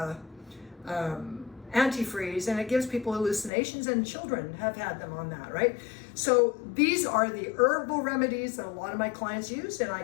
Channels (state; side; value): drops out; right; at 3.5 s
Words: antifreeze, and it gives people hallucinations, and children have had them on that, right? So these are the herbal remedies that a lot of my clients use, and I